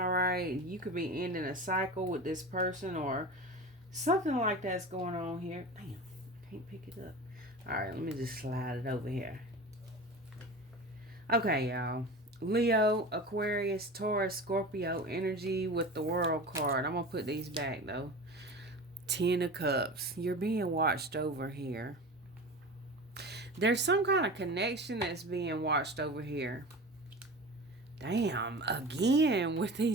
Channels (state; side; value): normal; both; correlation 0.32